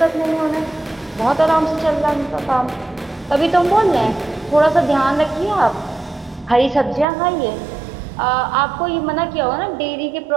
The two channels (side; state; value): left; drops out; at 7.1 s